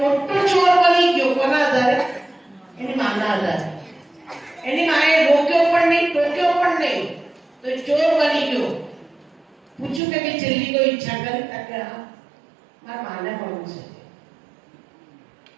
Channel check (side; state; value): left; drops out; at 10.0 s